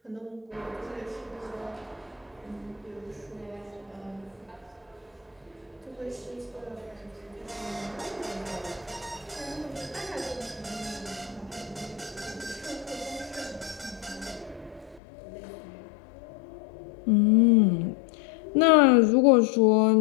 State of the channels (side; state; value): right; drops out; at 15.0 s